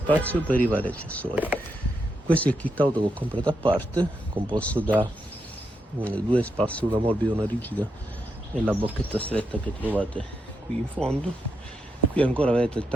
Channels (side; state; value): both; normal; correlation 0.83